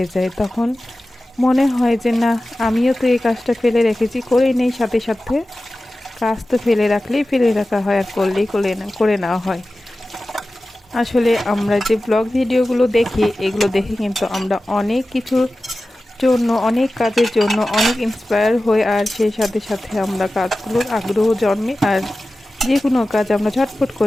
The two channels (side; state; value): both; normal; correlation 0.95